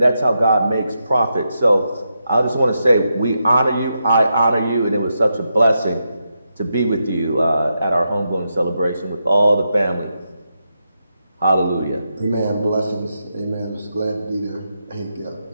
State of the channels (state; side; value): inverted; both; correlation -0.85